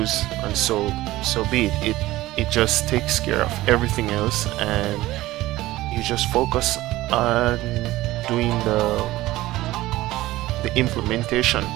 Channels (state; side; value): quieter; left; 17.1 dB